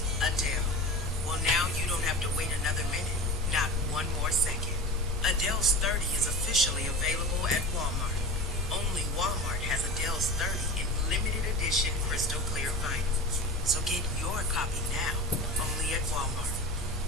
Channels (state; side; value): normal; both; correlation 0.32